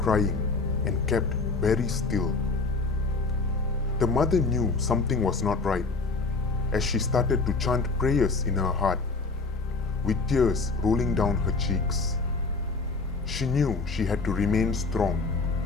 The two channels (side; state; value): right; quieter; 3.9 dB